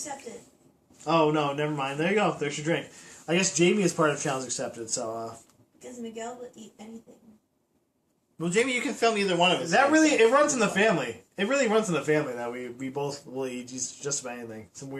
oh no, never mind. There you go. There's your drink. I guess Jamie is part of challenge accepted. So Because Miguel will eat anything. Well, Jamie, you can film either one of us. that really it runs in the family. It really runs in the family that we both will eat just about anything. Some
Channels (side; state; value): both; identical; correlation 1.00